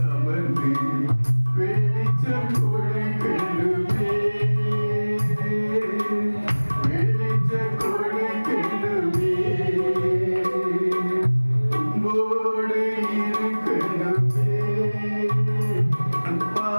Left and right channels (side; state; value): both; inverted; correlation -1.00